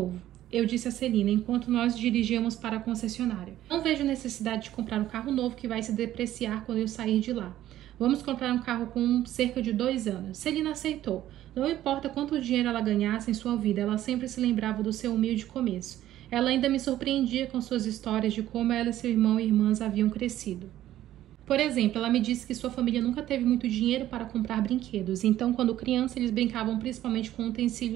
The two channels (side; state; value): left; quieter; 13.2 dB